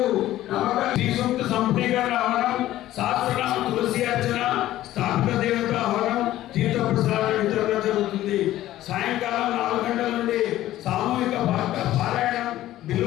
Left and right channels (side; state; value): right; quieter; 14.3 dB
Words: నమ్మక శ్రీ సూక్త సంపూర్ణీకరణ హవనం, శాస్త్రనామ ప్రసాద వితరణ జరుగుతుంది. సాయంకాలం 4 గంటల నుండి సామూహిక పారాయణం,